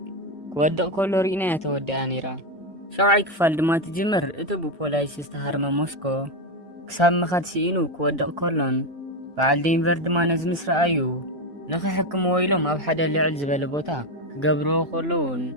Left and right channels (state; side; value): normal; both; correlation 0.10